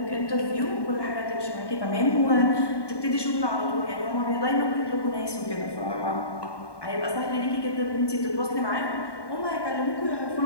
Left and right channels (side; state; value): right; late; 1.2 ms